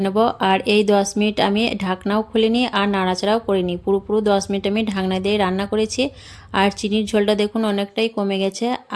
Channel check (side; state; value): both; identical; correlation 1.00